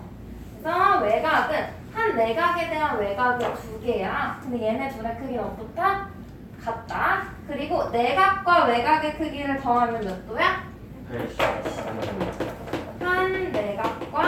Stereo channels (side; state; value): both; identical; correlation 1.00